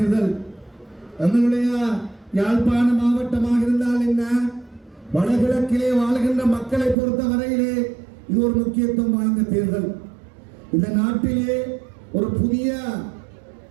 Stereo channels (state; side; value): drops out; left; at 7.0 s